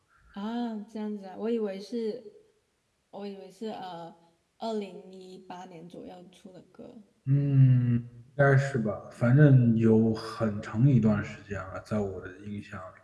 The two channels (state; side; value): identical; both; correlation 1.00